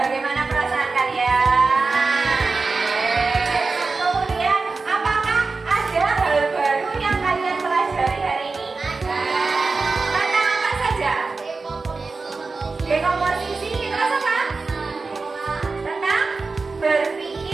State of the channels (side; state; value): left; quieter; 4.0 dB